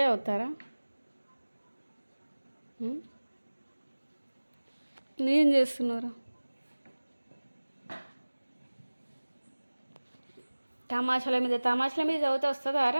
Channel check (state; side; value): inverted; both; correlation -1.00